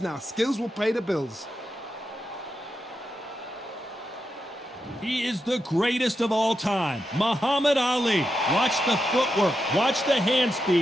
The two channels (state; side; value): normal; both; correlation 0.86